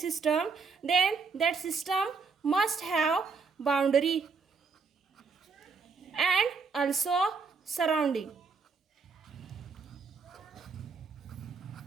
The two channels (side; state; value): left; quieter; 4.9 dB